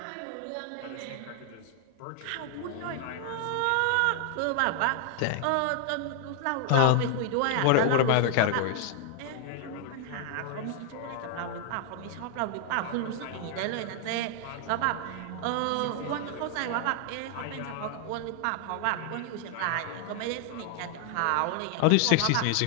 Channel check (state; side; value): different; both; correlation 0.00